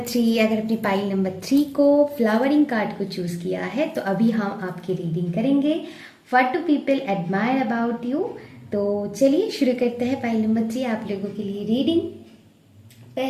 3, अगर अपनी पाइल नंबर 3 को फ्लावरिंग कार्ड को चूज किया है तो अभी हम आपकी रीडिंग करेंगे। What do people admire about you. तो चलिए शुरू करते हैं पाइल नंबर 3 आप लोगों के लिए रीडिंग।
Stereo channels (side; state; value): both; identical; correlation 1.00